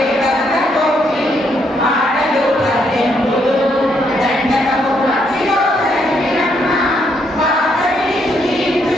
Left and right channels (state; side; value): normal; both; correlation 0.74